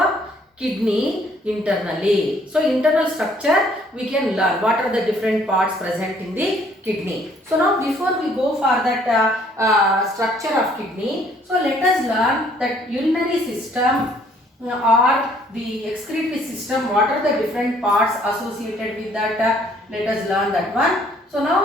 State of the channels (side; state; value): both; normal; correlation 0.62